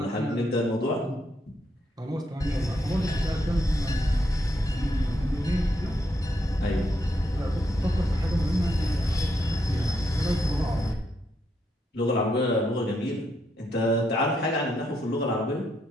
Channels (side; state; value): both; normal; correlation 0.79